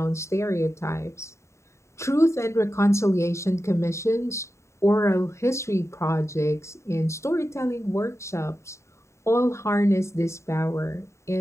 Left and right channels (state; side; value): late; right; 0.14 ms